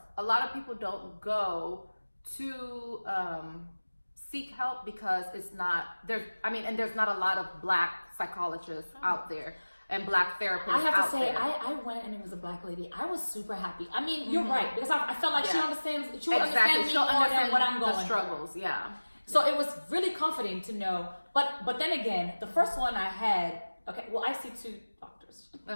A lot of people don't go to seek help because it's not there's. I mean, and there's not a lot of Black psychologists out there and Black therapists. I have to out say, there. I went and it was a Black lady. I was super happy. I mean, you're right, because I felt like she understands. She would understand me She'll more understand than what I'm going the through. struggles. Yeah. So it was really comforting to know. But then again, the first one I had. Okay, well, I see two doctors.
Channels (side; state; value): both; inverted; correlation -1.00